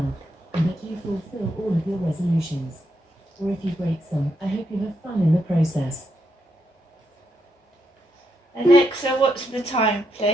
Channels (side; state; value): both; normal; correlation 0.80